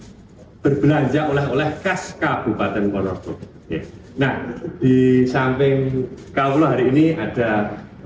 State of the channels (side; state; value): both; identical; correlation 1.00